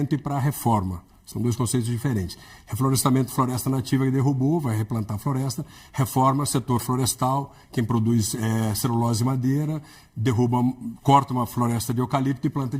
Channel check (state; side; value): identical; both; correlation 1.00